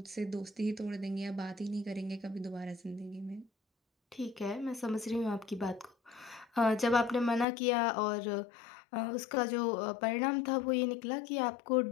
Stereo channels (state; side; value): drops out; right; at 7.5 s